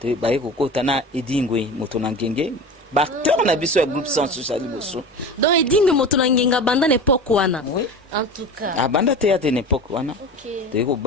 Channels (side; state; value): both; normal; correlation 0.32